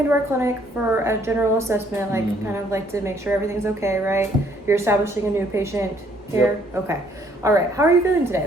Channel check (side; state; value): both; normal; correlation 0.65